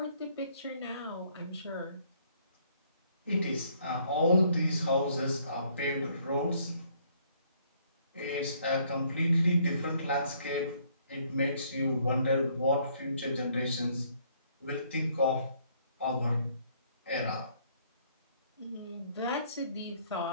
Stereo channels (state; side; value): inverted; both; correlation -0.65